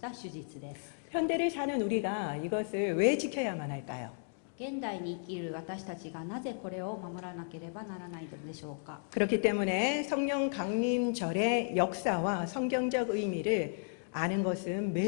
手術です。 현대를 사는 우리가 이것을 왜 지켜야만 할까요? 現代に生きる私たちがなぜこれを守らなければならないのでしょうか。 그렇기 때문에 성령 강림절의 역사와 성경적 의미를 아는 것은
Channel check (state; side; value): silent; right; digital silence